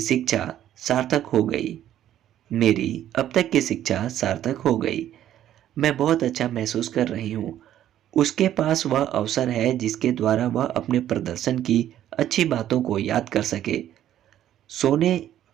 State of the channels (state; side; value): quieter; left; 11.7 dB